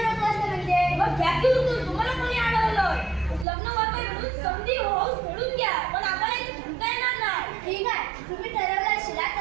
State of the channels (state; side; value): drops out; left; at 3.5 s